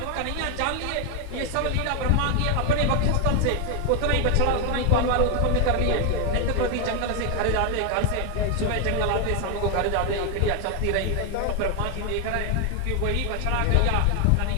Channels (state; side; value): different; both; correlation 0.01